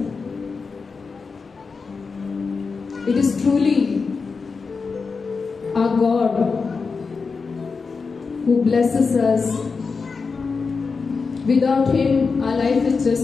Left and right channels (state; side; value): quieter; right; 4.8 dB